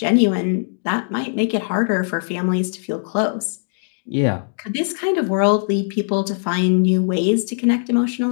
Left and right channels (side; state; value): right; silent; digital silence